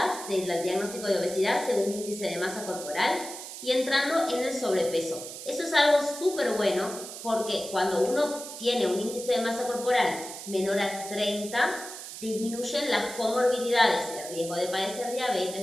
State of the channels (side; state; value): right; noise; hiss, 11 dB below the sound